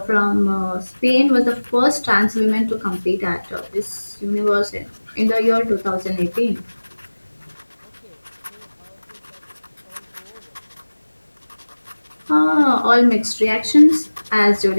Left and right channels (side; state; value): both; inverted; correlation -1.00